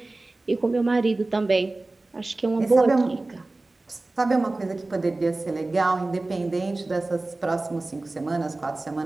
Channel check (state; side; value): quieter; left; 3.1 dB